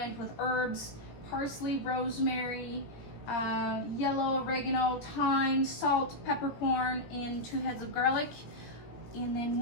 with herbs, parsley, rosemary, yellow oregano, thyme, salt, peppercorn, and 2 heads of garlic. And then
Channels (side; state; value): right; late; 17 ms